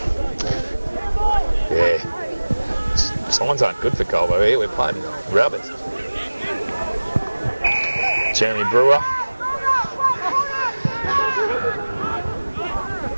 Yeah. Signs aren't good for Colbo here. We're playing rubbers. Jeremy Brewer.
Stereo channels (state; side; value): inverted; both; correlation -1.00